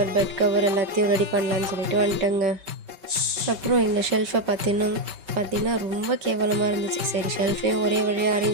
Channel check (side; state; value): left; late; 5.2 ms